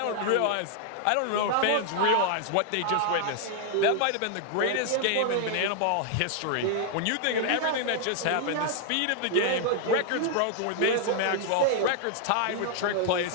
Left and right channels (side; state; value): both; different; correlation 0.00